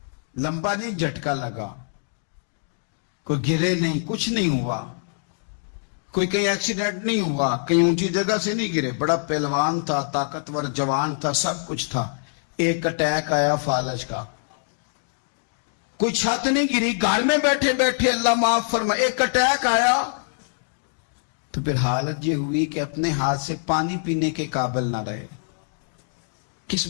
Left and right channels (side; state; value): right; silent; digital silence